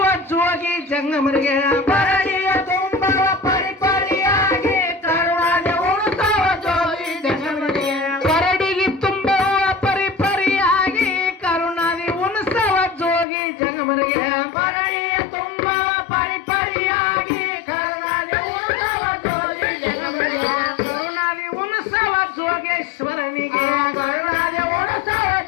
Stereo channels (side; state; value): right; drops out; at 13.2 s